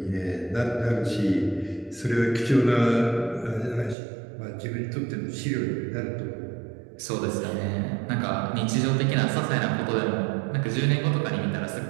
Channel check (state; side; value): drops out; left; at 4.0 s